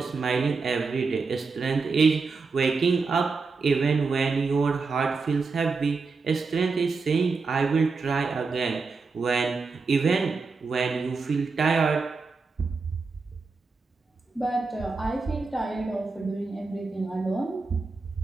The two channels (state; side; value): quieter; left; 4.4 dB